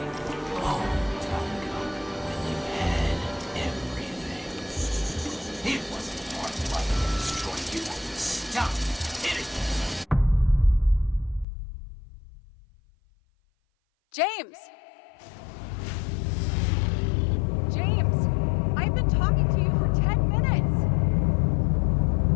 long time ago when you had everything. It wasn't hard luck to destroy you. Stop hitting me. James! James! I've been talking to you for 10 minutes!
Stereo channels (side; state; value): right; drops out; at 11.5 s